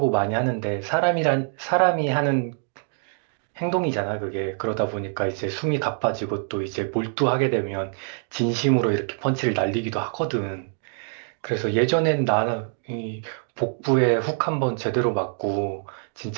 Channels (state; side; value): silent; left; 62 dB below the other